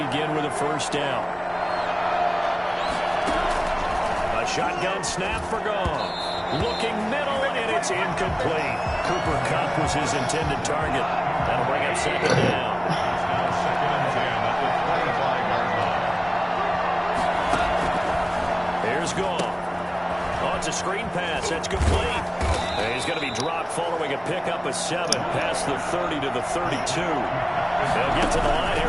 with a first down. A shotgun snap for Goff. Looking middle, and it's incomplete. Cooper Kupp was his intended target. That'll bring up second down. Second and 10 at the 25-yard line. Here's Goff. Oh, it's a screen pass. That's complete. And he's going to be dropped following a pickup of 7 past the 30 to the 32. They'll get to the line here,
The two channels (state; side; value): identical; both; correlation 1.00